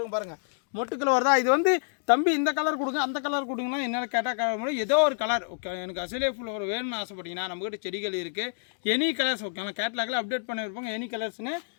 பாருங்கள். மொட்டுக்கள் வருதா. இது வந்து தம்பி இந்த கலர் கொடுங்க அந்த கலர் கொடுங்கன்னா என்ன கேட்டால் ஏதோ ஒரு கலர் ஓகே. எனக்கு அசேலியா ஃப்ளவர் வேணும்னு ஆசைப்பட்டீங்கன்னா நம்மகிட்ட செடிகள் இருக்குது. Any colours okay. ஆனால் கேட்லாகில் அப்டேட் பண்ணியிருப்பாங்க எனி கலர்ஸ்னு.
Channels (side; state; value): right; silent; digital silence